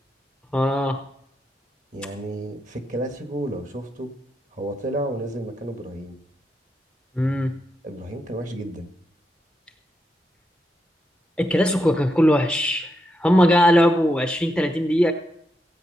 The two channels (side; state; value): both; normal; correlation 0.84